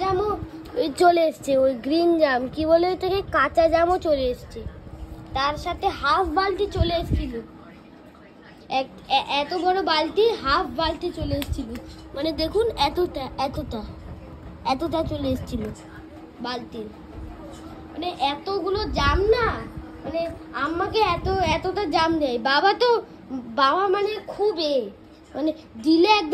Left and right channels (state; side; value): identical; both; correlation 1.00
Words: জামও চলে এসছে, ওই গ্রিন জাম কি বলে ওটাকে, কাঁচা জামও চলে এসছে। তার সাথে হাফ বালতি চলে এসেছিল, এত বড় বালতি, হাফ বালতি চলে এসেছিল। মানে দেখুন, এতটা চলে এসেছিল বালতির। মানে এতগুলো জাম না, মানে আম্মাকে এতটা জাম দেয়। বাবা মানে খুব মানে দিলে